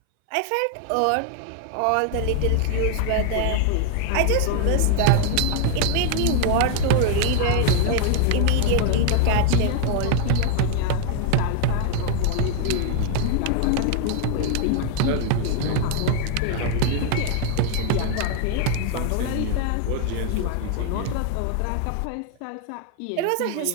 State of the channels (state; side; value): different; both; correlation 0.00